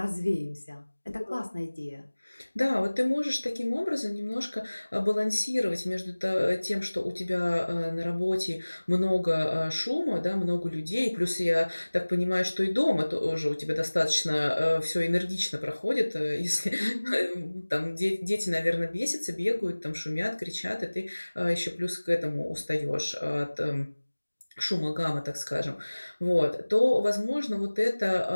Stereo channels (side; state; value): both; inverted; correlation -1.00